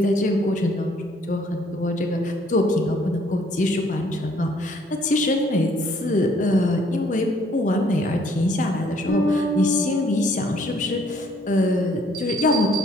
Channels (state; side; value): normal; both; correlation 0.63